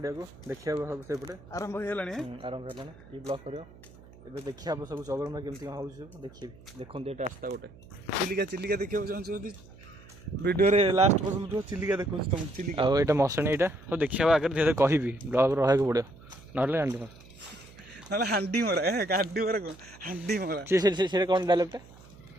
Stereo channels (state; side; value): noise; right; hum, 22 dB below the sound